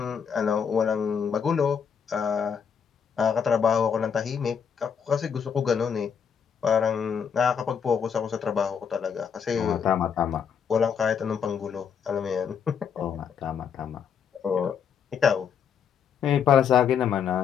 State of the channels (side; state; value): right; quieter; 7.2 dB